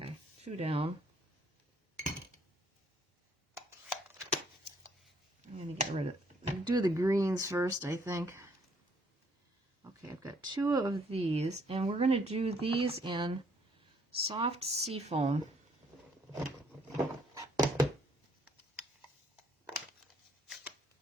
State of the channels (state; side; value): normal; both; correlation 0.66